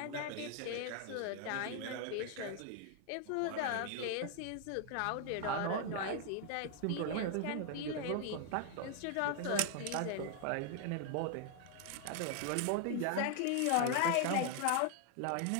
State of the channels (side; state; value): both; different; correlation 0.00